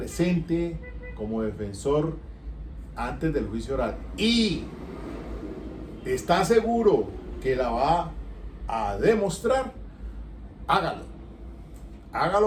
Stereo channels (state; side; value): identical; both; correlation 1.00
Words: como defensor antes del juicio oral y está seguro que la va a demostrar, hágalo.